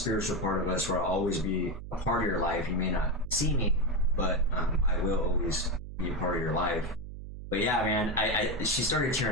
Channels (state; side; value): noise; right; hum, 11 dB below the sound